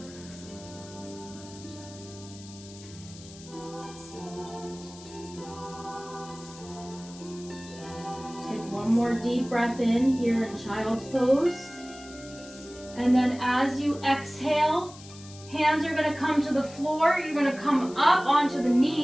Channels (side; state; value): left; noise; hiss, 18 dB below the sound